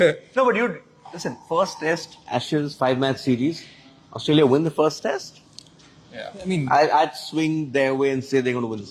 No, but listen, first test, Ashes, 5-match series, Australia win the first test. Yeah. I mean, I'd swing their way and say they're going to win the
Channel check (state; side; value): identical; both; correlation 1.00